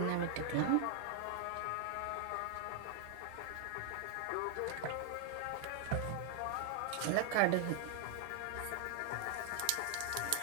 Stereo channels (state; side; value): different; both; correlation 0.00